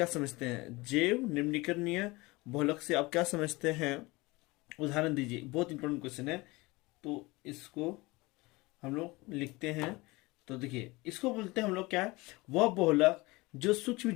समझते हैं। जैव निम्नीकरणीय बहुलक से आप क्या समझते हैं, उदाहरण दीजिए। बहुत इंपॉर्टेंट क्वेश्चन है, तो इसको हम लोग लिखते हैं। तो देखिए, इसको बोलते हैं हम लोग क्या है, वह बहुलक जो सूक्ष्म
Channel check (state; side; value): quieter; right; 22.8 dB